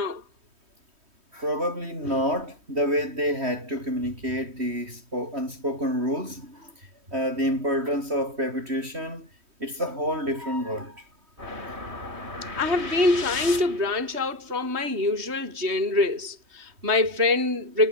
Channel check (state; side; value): late; left; 3.2 ms